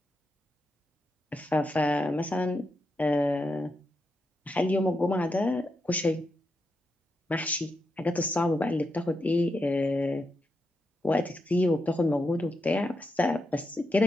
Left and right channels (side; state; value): both; normal; correlation 0.85